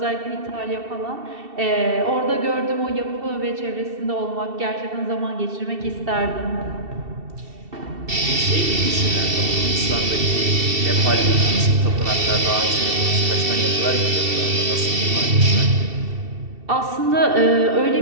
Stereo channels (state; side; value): late; left; 2.7 ms